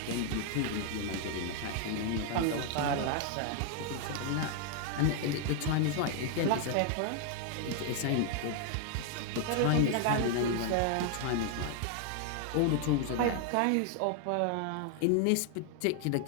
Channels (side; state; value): both; different; correlation 0.00